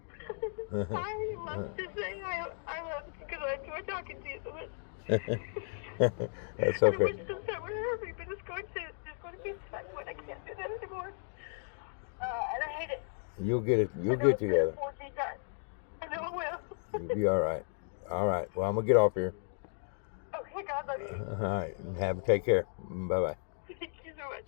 I love to say I love you because I enjoy talking to you so much. That's I okay. wish this time would hurt me, but it's going to be a time when I can't do that anymore. And I hate it. You'll get it. You'll get together. I know I will. You'll be all right. All right. Well, I'm gonna get off here. Okay, God love you. All right. Take care. Bye bye. Thank you so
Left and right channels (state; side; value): silent; right; 55 dB below the other